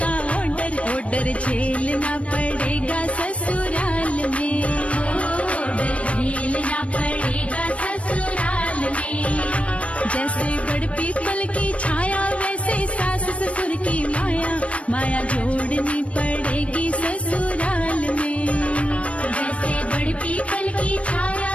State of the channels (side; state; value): right; late; 0.063 ms